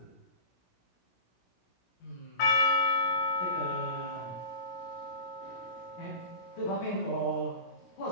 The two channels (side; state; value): right; late; 17 ms